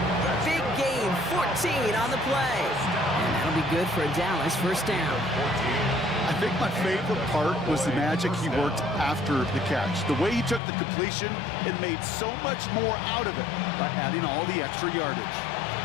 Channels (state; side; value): drops out; right; at 10.6 s